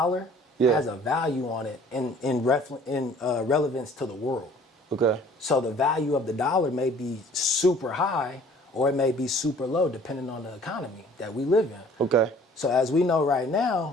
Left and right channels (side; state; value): both; normal; correlation 0.53